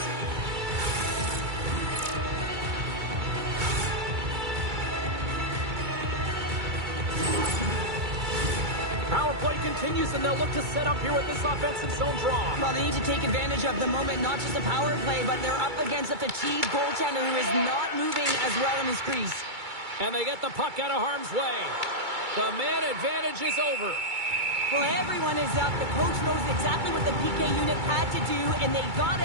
Continues, and they'll look to set up here with this offensive zone draw. Well, they need to take advantage of the moment, not just a power play, but they're up against a fatigued goaltender who is not moving as well in his crease. And they get the puck out of harm's way. The man advantage is over. Well, everyone is up. The coach knows exactly what the PK unit had to do, and they got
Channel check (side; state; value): left; late; 2.3 ms